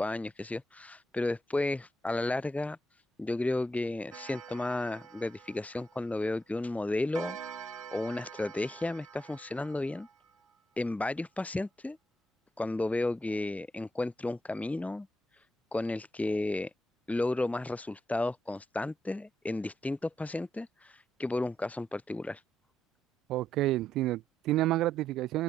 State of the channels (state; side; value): normal; both; correlation 0.80